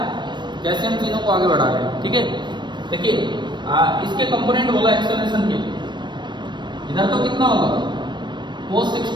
कैसे हम तीनों को आगे बढ़ा रहे हैं? ठीक है, देखिए इसके कंपोनेंट बोला एक्सेलरेशन के, इधर तो कितना होगा? cos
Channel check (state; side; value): late; left; 0.22 ms